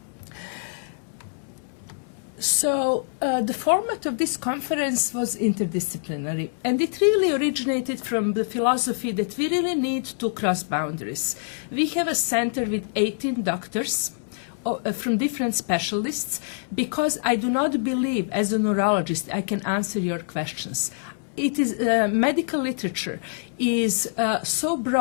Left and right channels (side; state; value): right; silent; 62 dB below the other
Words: So the format of this conference was interdisciplinary, and it really originated from the philosophy that we really need to cross boundaries. We have a center with 18 doctors from different specialists because I do not believe as a neurologist I can answer your questions. It is medical literature is so